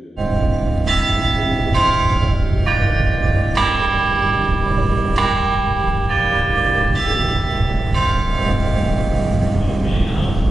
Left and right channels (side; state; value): both; normal; correlation 0.93